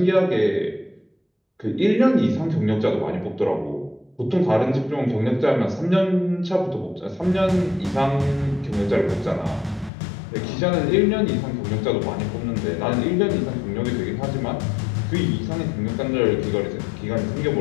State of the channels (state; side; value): drops out; right; at 9.9 s